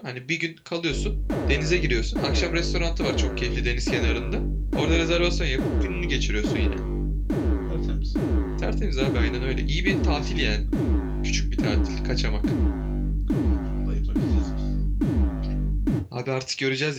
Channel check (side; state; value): both; identical; correlation 1.00